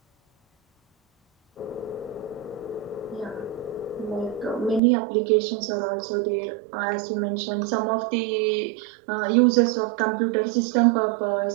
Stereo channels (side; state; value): left; drops out; at 4.8 s